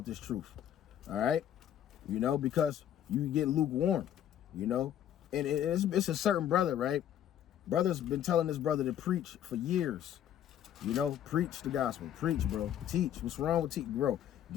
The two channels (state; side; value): quieter; right; 10.6 dB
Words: this truth, all right? You know, because you get lukewarm, you know, and it's a certain brother, right? Brother's been telling this brother to preach for years. You know, preach the gospel. Preach, bro. Teach. What's wrong with teach, bro?